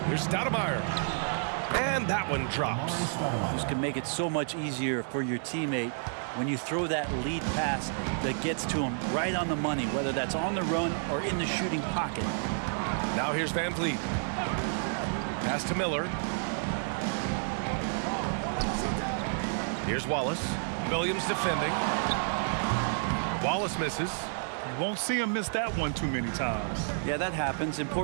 Here's Stoudemire. And that one drops. This can make it so much easier for your teammate when you throw that lead pass that gets to him right on the money, whether that's on the run or in the shooting pocket. Now here's Van Vliet. Pass to Miller. Here's Wallace. Williams defending. Wallace misses. You won't see him miss that one too many times. Yeah, that happens.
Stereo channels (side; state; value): left; silent; digital silence